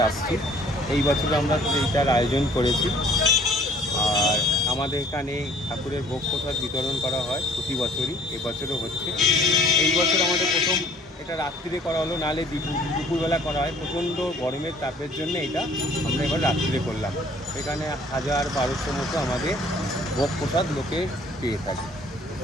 আসছি। এই বছর আমরা এইটার আয়োজন করেছি। আর আমাদের এখানে ঠাকুরের ভোগ প্রসাদ বিতরণ করা হয় প্রতি বছরই, এবছরও হচ্ছে। এই বছর আমাদের প্রথম এটা রাত্রিরে করা হলো, নাহলে দুপুরবেলা করা হয়। প্রচণ্ড গরমের তাপের জন্য এটা আমরা এবার রাত্রিরে করলাম। এখানে 1000-1200 মতো আমাদের ভোগ প্রসাদ লোকে পেয়ে থাকে।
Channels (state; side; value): normal; both; correlation 0.56